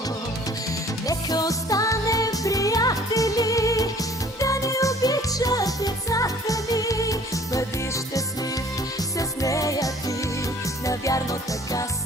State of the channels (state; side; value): normal; both; correlation 0.53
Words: Нека останем приятели, да ни обичат децата ни. Бъди щастлив с нея ти, навярно така